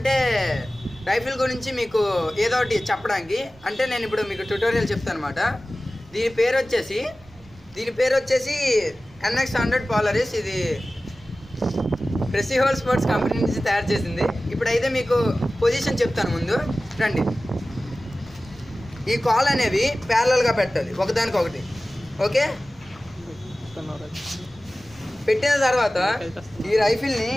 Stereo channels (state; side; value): noise; right; rumble, 25 dB below the sound